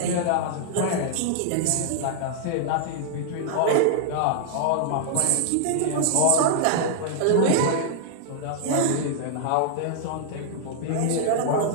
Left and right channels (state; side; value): different; both; correlation -0.01